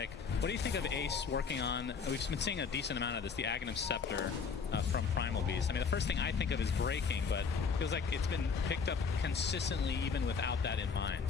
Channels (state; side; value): quieter; right; 5.6 dB